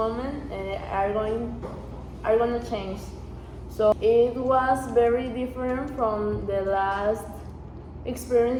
are going to change. So it was very different from the last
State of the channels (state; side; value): identical; both; correlation 1.00